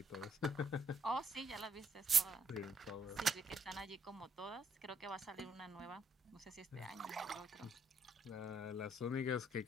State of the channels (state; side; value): normal; both; correlation 0.71